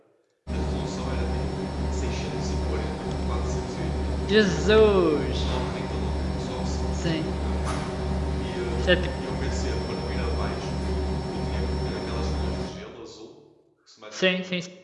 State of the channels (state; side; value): identical; both; correlation 1.00